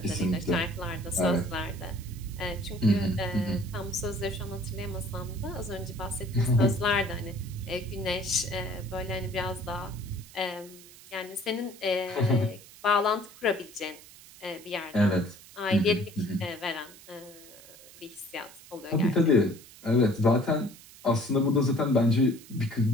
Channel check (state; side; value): noise; right; hiss, 20 dB below the sound